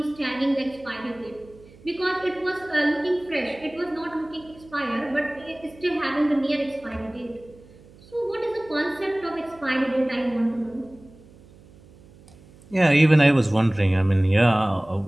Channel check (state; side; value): noise; right; hum, 24 dB below the sound